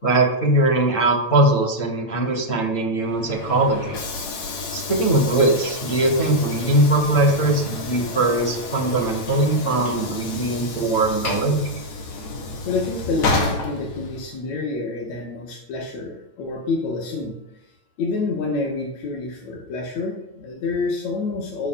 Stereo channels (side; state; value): right; late; 8.9 ms